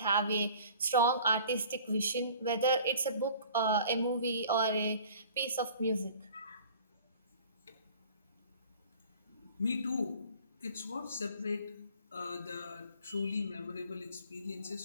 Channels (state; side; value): inverted; both; correlation -0.48